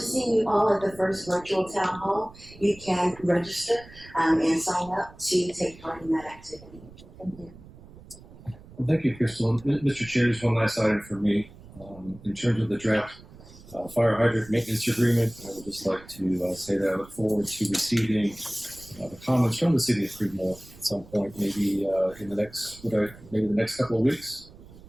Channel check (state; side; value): noise; right; rumble, 20 dB below the sound